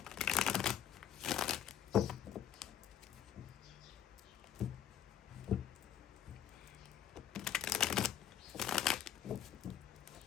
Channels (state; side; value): quieter; right; 9.9 dB